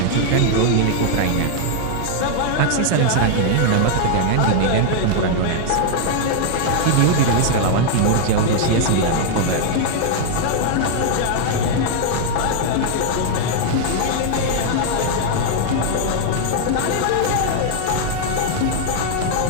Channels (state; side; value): different; both; correlation 0.00